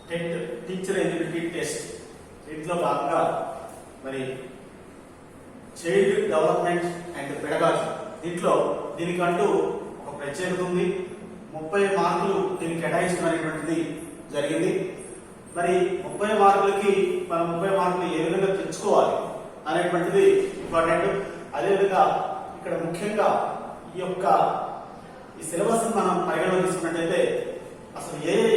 TET teacher eligibility test దీంట్లో భాగంగా మరి చైల్డ్ డెవలప్మెంట్ అండ్ పెడగాజీ దీనికంటూ ఒక ప్రత్యేకత ఉంది. 30 మార్కులు దీనికి కేటాయించడం అనేటువంటిది జరిగింది. మరి 30 మార్కులకి మనం 30 మార్కులు ఏ విధంగా తెచ్చుకోవాలి అనేటువంటిది ఇంపార్టెంట్. అదేవిధంగా ఇక్కడ ముఖ్యంగా ఈ సిలబస్ మనం పరిగణలో తీసుకున్నట్లయితే అసలు ఏ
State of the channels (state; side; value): identical; both; correlation 1.00